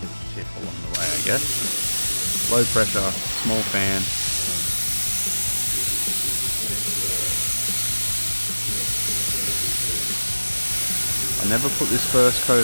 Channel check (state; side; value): inverted; both; correlation -1.00